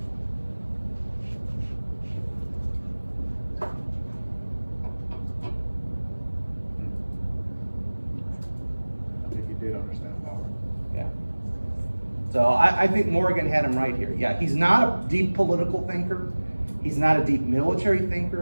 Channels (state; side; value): inverted; both; correlation -1.00